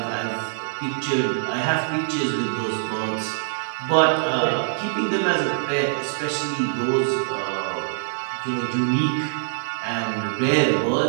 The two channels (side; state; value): left; silent; digital silence